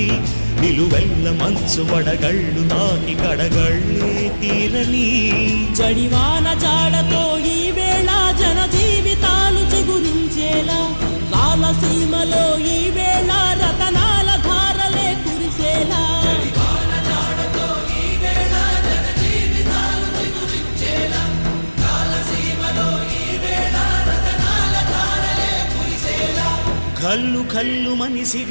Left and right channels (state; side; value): inverted; both; correlation -1.00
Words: నిలువెల్ల మంచు వడగళ్ళు తాకి కడగళ్ళే తీరని జడివాన జాడతో ఈ వేళ జన జీవితాలు చిగురించేలా రాలసీమలో ఈ వేళ రతనాల ధారలే కురిసేలా కల్లు